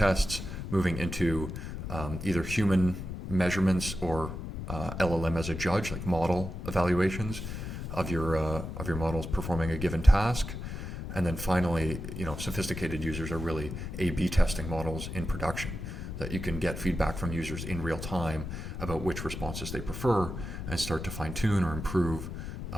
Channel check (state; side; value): noise; left; rumble, 7 dB below the sound